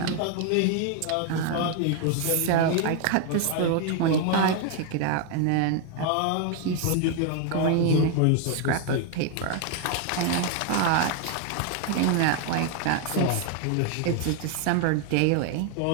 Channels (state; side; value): different; both; correlation 0.00